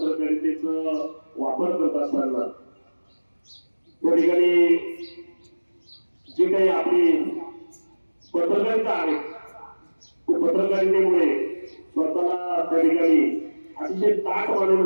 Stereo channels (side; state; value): both; inverted; correlation -1.00